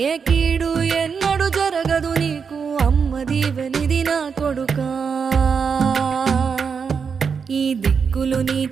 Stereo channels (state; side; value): quieter; left; 6.0 dB